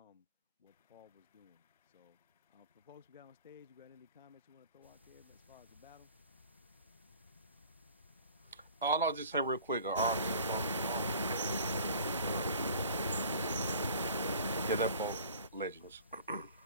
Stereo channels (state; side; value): inverted; both; correlation -0.48